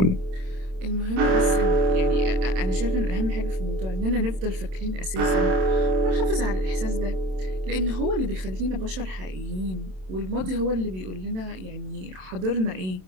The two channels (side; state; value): left; late; 27 ms